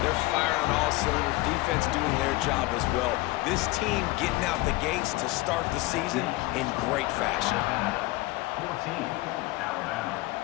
They're firing on all cylinders, defense doing their job as well. This team getting out the gates to start the season in great fashion. 14, Alabama,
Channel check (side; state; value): right; quieter; 20.3 dB